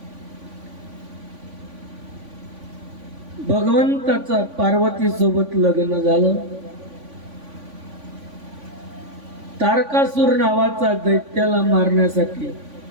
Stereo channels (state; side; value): late; left; 3.5 ms